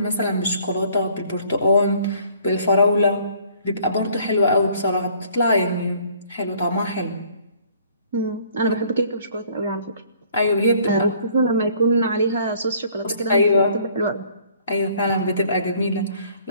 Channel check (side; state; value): both; inverted; correlation -0.58